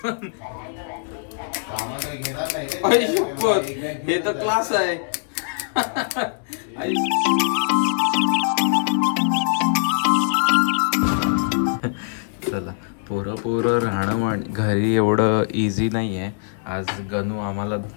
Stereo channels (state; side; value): silent; right; digital silence